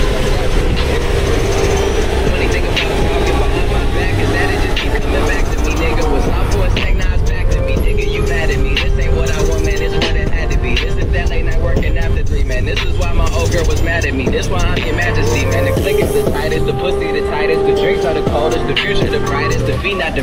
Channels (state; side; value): identical; both; correlation 1.00